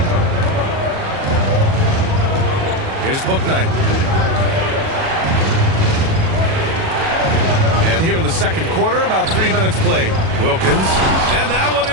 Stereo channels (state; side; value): late; left; 37 ms